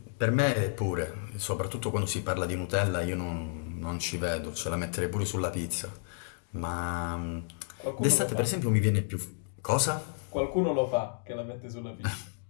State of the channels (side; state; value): right; silent; digital silence